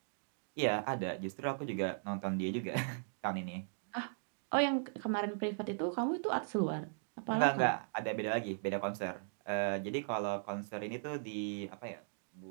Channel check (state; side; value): silent; left; digital silence